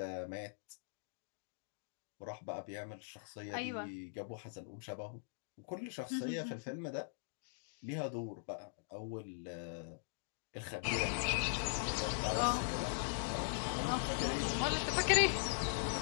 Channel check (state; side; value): silent; right; digital silence